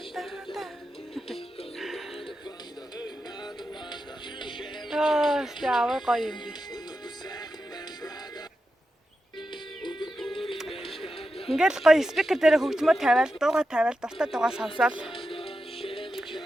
Яавар гоё юм би. Ингээл гоё спикер дээр хөгжмөө тавиал, дуугаа тавиал, дуртай дуугаа сонсоол.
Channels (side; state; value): both; normal; correlation 0.89